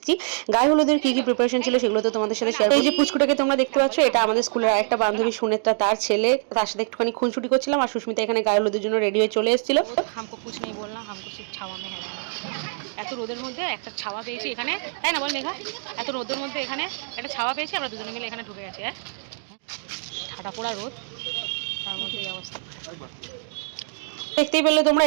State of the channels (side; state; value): left; silent; digital silence